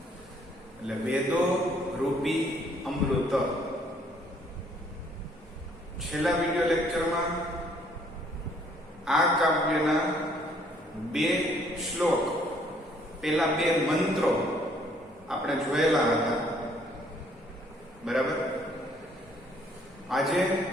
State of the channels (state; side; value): normal; both; correlation 0.63